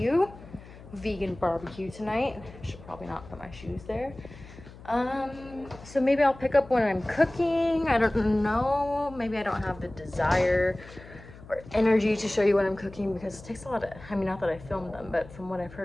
vegan barbecue tonight. Should probably not put my shoes there. So maybe I'll pick up when I'm cooking. I don't know. Maybe I don't have the desire or energy to show you when I'm cooking because it takes a lot of, I mean, not that I filmed them, but from what I've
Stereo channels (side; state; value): left; noise; hum, 18 dB below the sound